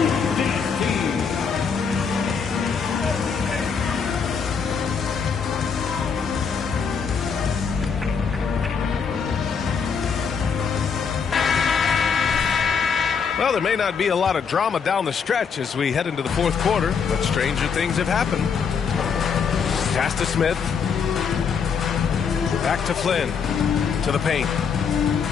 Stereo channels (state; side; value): quieter; right; 6.2 dB